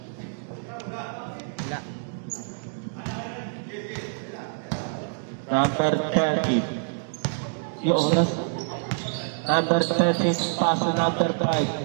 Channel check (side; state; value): left; silent; digital silence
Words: Wala. Number 30. Yung oras. Number 30. Pass to number